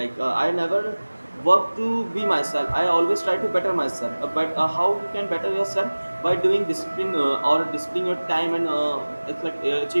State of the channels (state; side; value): inverted; both; correlation -1.00